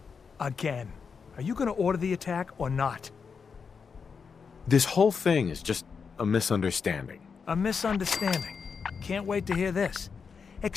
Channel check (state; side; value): quieter; right; 5.8 dB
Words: Again. Are you gonna order the attack or not? This whole thing is just a misunderstanding. A misunderstanding. Can't wait to hear this.